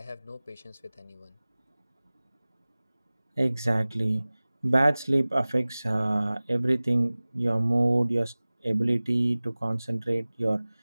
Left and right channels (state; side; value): inverted; both; correlation -0.99